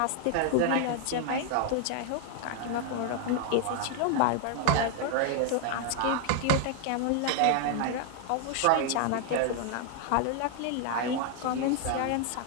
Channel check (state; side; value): different; both; correlation 0.00